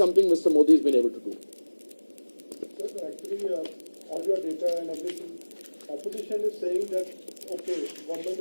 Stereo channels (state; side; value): inverted; both; correlation -1.00